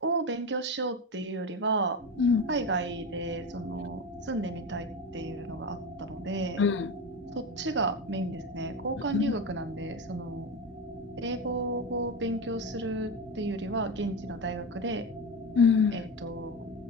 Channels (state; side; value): normal; both; correlation 0.20